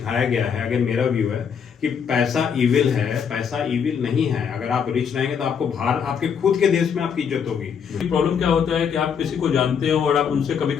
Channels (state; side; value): quieter; right; 7.1 dB